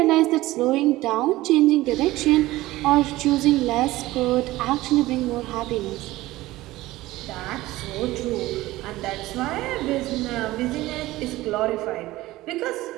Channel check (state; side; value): quieter; left; 17.6 dB